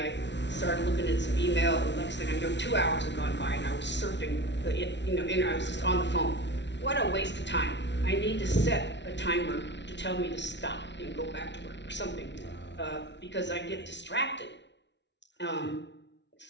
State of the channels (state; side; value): late; right; 0.51 ms